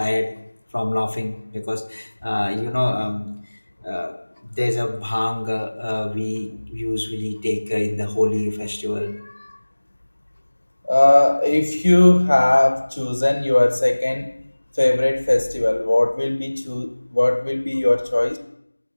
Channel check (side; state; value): both; inverted; correlation -1.00